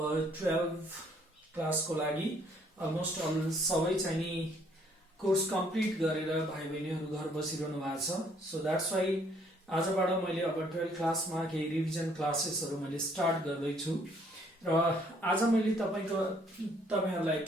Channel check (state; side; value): normal; both; correlation 0.64